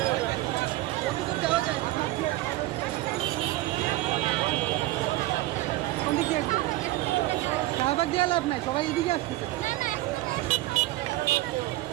শাহবাগ দিয়ে লাভ নাই, সবাই এদিকে আসতেছে।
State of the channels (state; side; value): quieter; left; 17.6 dB